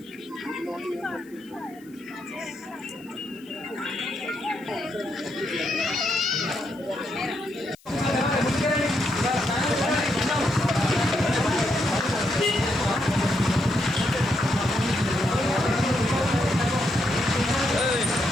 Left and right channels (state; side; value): noise; left; hiss, 28 dB below the sound